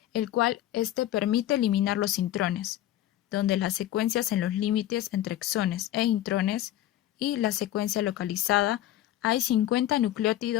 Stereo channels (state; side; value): quieter; right; 13.2 dB